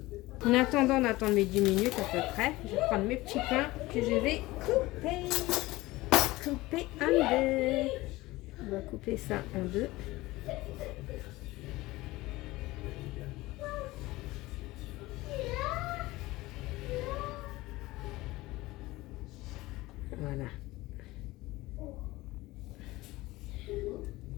En attendant d'attendre mes 10 minutes à peu près, je vais prendre mes petits pains que je vais couper en deux. On va couper ça en deux. Voilà.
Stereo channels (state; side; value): quieter; right; 19.4 dB